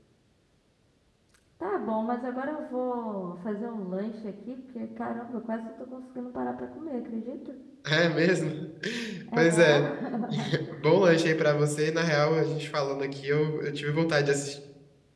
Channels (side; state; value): both; identical; correlation 1.00